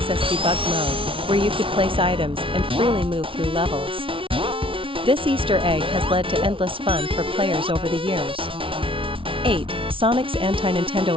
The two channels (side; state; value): left; late; 0.25 ms